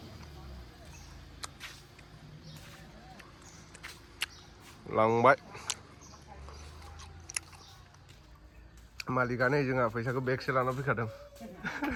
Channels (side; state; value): both; identical; correlation 1.00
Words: लांबाय मालिकानो जोंहा फैसाखौ बेगसे लाना फैखादों